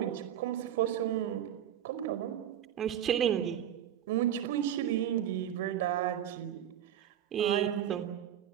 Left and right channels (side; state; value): left; quieter; 10.4 dB